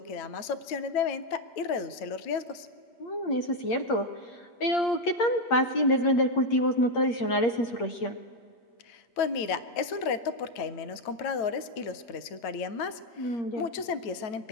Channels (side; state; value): right; late; 8.6 ms